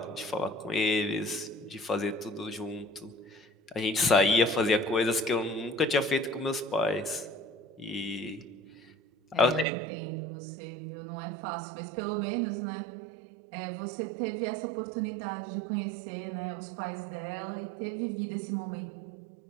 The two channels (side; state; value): left; drops out; at 9.7 s